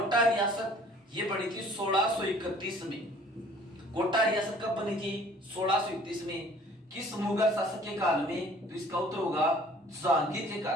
रियासत ये बनी थी 1631 में। कोटा रियासत कब बनी थी? 1631 में। किस मुगल शासक के काल में? तो इसका उत्तर होगा जहांगीर के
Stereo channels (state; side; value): normal; both; correlation 0.53